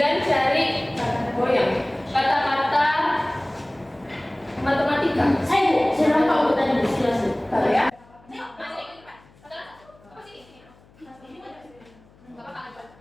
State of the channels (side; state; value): left; noise; hum, 28 dB below the sound